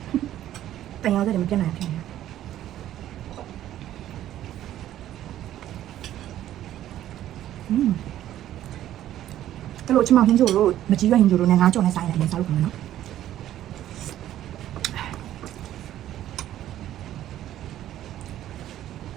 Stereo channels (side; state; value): left; quieter; 12.5 dB